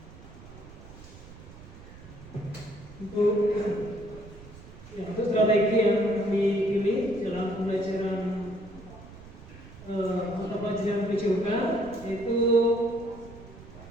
Bu. Ya, untuk strategi yang kami pilih dalam pembelajaran mata pelajaran PJOK yaitu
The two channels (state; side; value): noise; right; rumble, 18 dB below the sound